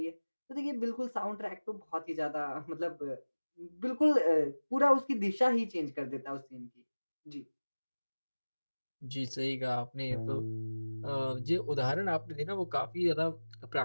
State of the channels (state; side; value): inverted; both; correlation -1.00